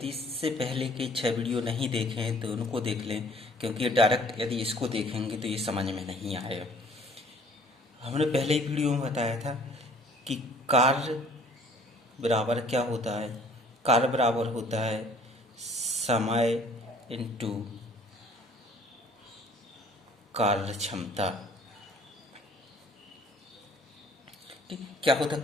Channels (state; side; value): normal; both; correlation 0.55